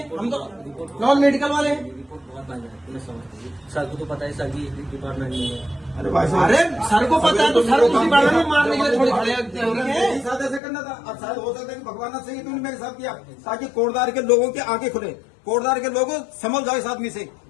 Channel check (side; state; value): right; drops out; at 10.6 s